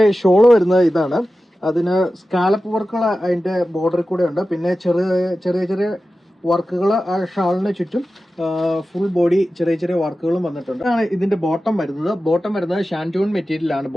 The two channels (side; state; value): both; normal; correlation 0.94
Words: ഷോള് വരുന്നത് ഇതാണ്. അതിന് സ്കാലപ്പ് വർക്കുകൾ അതിന്റെ ബോർഡറിൽ കൂടെ ഉണ്ട്. പിന്നെ ചെറിയ ചെറിയ വർക്കുകൾ ആ ഷാളിന് ചുറ്റും ഫുൾ ബോഡി ചെറിയ ചെറിയ വർക്കുകളും വന്നിട്ടുണ്ട്. ആണ് ഇതിന്റെ ബോട്ടം വരുന്നത് ഷാൻറ്റൂൺ മെറ്റീരിയലാണ്